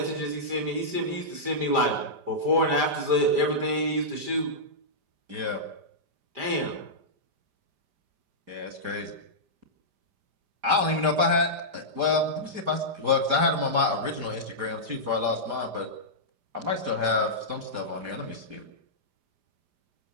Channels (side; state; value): left; late; 5.0 ms